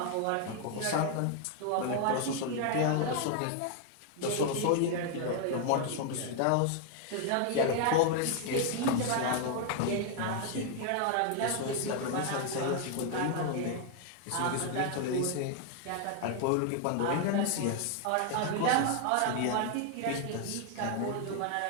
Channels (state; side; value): different; both; correlation 0.00